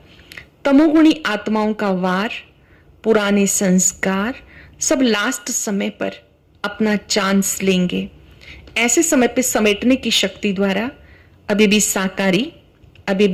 तमोगुणी आत्माओं का वार, पुराने संस्कार सब लास्ट समय पर अपना चांस लेंगे। ऐसे समय पे समेटने की शक्ति द्वारा अभी भी साकारी, अभी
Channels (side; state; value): both; identical; correlation 1.00